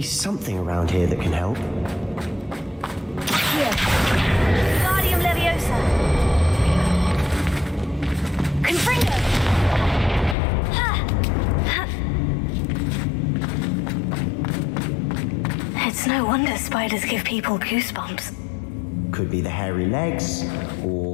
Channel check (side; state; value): right; drops out; at 10.4 s